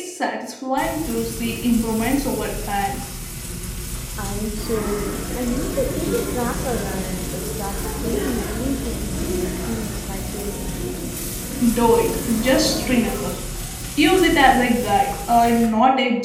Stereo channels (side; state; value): both; identical; correlation 1.00